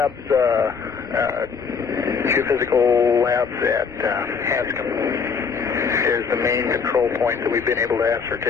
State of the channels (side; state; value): right; quieter; 5.8 dB